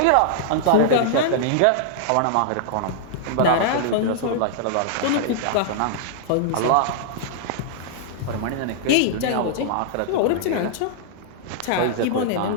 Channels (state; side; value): different; both; correlation -0.01